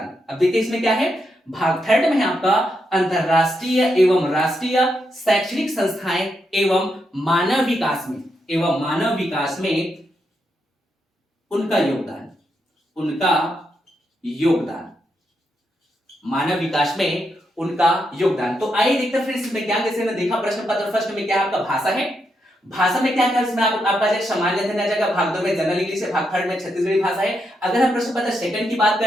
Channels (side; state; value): both; normal; correlation 0.82